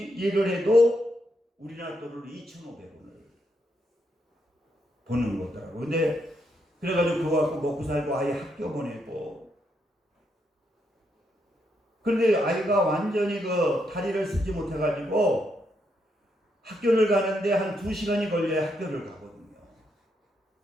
일을 해도 우리나라 돈으로 2,500원을 버는 거더라고. 근데 그래가지고 그거 갖고 먹고 살고 아이 학교 보내고 그런데 아이가 완전히 그 다리를 쓰지 못해가지고 학교를 가는데 한 2시간이 걸려야 학교를 가거든요.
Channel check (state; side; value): normal; both; correlation 0.79